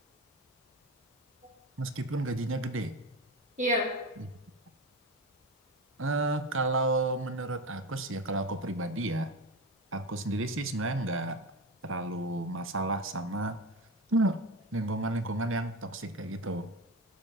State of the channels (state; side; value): normal; both; correlation 0.23